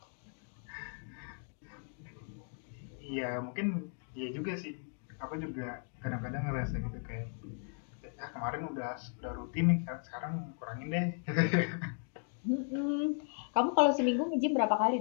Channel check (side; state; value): right; silent; 54 dB below the other